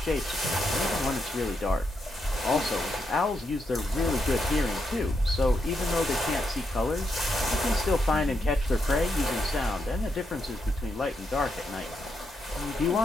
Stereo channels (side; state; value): both; normal; correlation 0.81